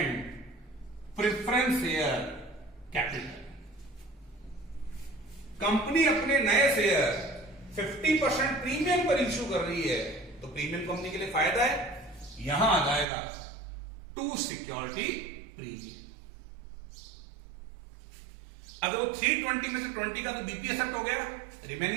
preference share capital. Company अपने नए शेयर 50% प्रीमियम पर इश्यू कर रही है, तो प्रीमियम कंपनी के लिए फायदा है, यहां आ जाएगा टू सिक्योरिटी प्रीमियम। अगर वो 320 में से 20 का तो बीपी एक्सेप्ट हो गया,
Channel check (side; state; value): left; drops out; at 13.1 s